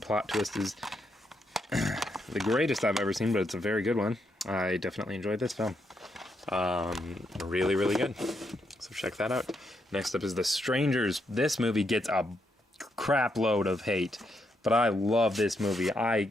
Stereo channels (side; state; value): both; normal; correlation 0.79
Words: twist is the greatest I've ever seen, but it's a very good one. I definitely enjoyed this film. Really, really good. So check that out. Next up is The Strangers. This movie gets a crap load of hate, but I love this movie.